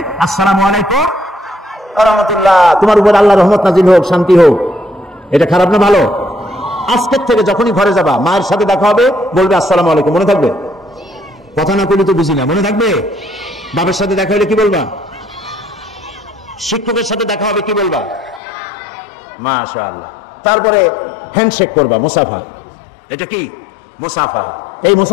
আসসালামু আলাইকুম ওয়া রাহমাতুল্লাহ, তোমার উপর আল্লাহর রহমত নাজিল হোক, শান্তি হোক। এটা খারাপ না ভালো? আজকের থেকে যখনই ঘরে যাবা, মায়ের সাথে দেখা হবে, বলবে আসসালামু আলাইকুম। মনে থাকবে? কথা না বলি তো বুঝি না, মনে থাকবে? বাবার সাথে দেখা হলে কি বলবা? শিক্ষকের সাথে দেখা হবে, কি বলবা? মাশাআল্লাহ। তারপরে হ্যান্ডশেক করবা, মুসাফা। এটা কি? মুসাফা। এই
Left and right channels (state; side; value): drops out; right; at 18.4 s